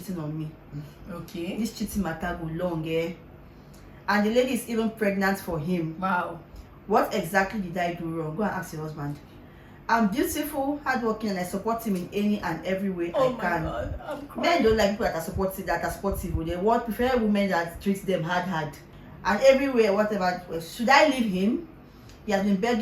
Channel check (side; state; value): both; identical; correlation 1.00